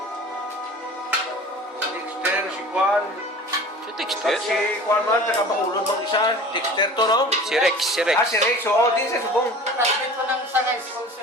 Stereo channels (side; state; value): both; normal; correlation 0.41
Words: Dexter, si Juan. Si Dexter? Si Juan man, taga-Bacolod bang isa. Dexter to, no? Si Rex, si Rex. Ah, si Rex. Oo, din sa subong. Classmate ko ng sa high school